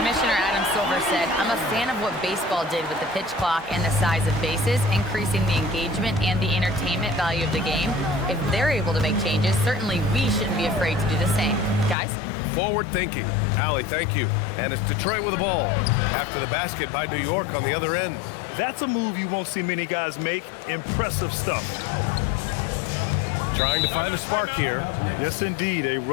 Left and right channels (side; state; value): right; drops out; at 12.0 s